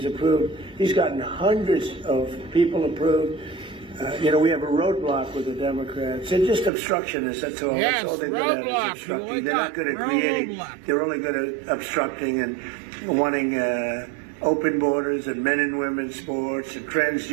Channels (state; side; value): drops out; left; at 6.7 s